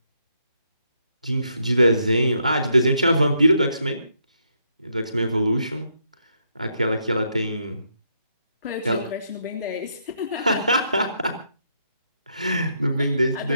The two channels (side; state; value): both; inverted; correlation -0.76